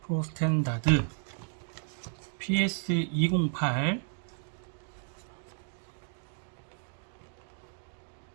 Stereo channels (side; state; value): left; silent; 55 dB below the other